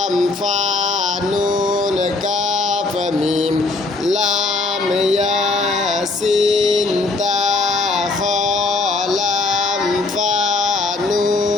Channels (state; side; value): quieter; right; 3.5 dB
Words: ফা নুন কাফ মিম। লাম ইয়াসিন তা